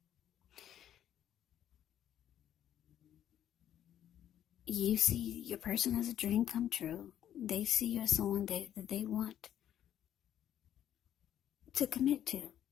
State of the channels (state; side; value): quieter; right; 10.9 dB